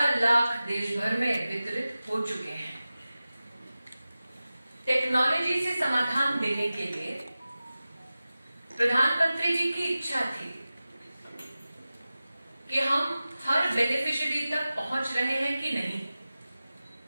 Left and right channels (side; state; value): both; inverted; correlation -0.95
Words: लाख देश भर में वितरित हो चुके हैं। टेक्नोलॉजी से समाधान देने के लिए प्रधानमंत्री जी की इच्छा थी कि हम हर बेनिफिशियरी तक पहुंच रहे हैं कि नहीं,